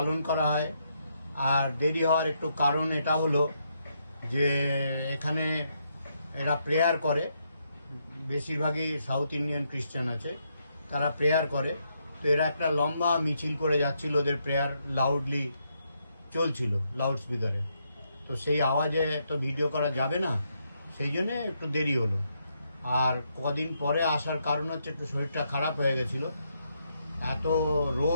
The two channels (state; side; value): inverted; both; correlation -0.78